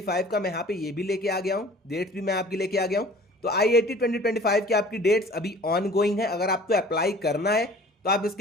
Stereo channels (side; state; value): both; normal; correlation 0.48